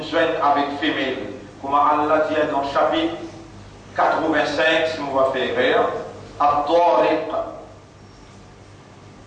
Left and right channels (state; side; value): identical; both; correlation 1.00